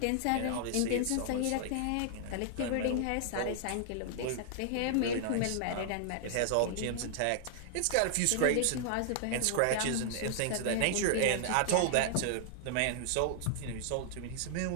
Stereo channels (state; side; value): different; both; correlation -0.01